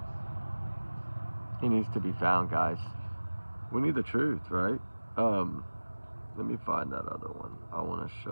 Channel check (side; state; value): both; inverted; correlation -1.00